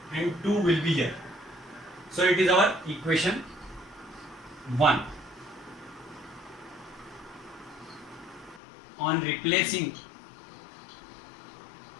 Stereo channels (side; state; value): right; drops out; at 8.6 s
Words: and 2 will be here. So it is our equation 1. on replacing